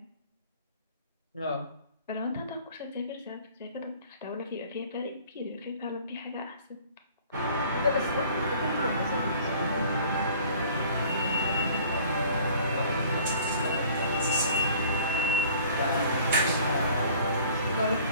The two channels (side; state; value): both; inverted; correlation -0.51